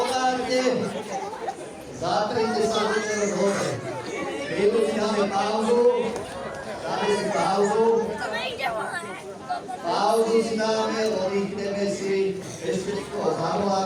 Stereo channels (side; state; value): both; identical; correlation 1.00